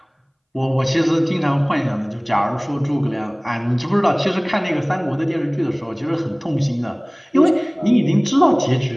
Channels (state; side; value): identical; both; correlation 1.00